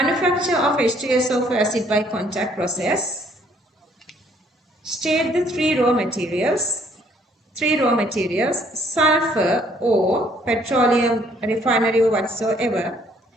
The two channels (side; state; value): both; normal; correlation 0.64